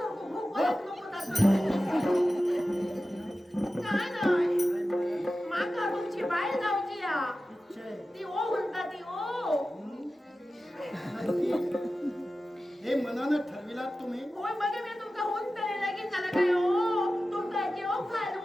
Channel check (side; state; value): both; normal; correlation 0.94